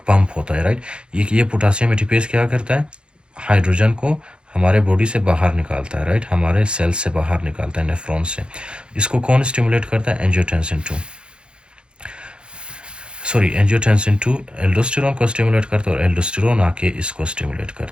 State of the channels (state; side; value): late; left; 0.054 ms